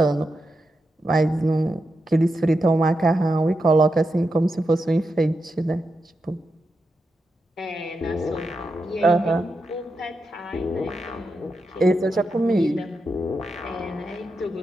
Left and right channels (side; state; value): both; normal; correlation 0.87